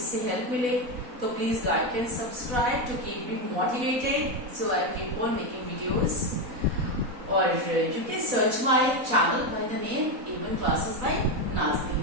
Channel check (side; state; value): left; late; 4.1 ms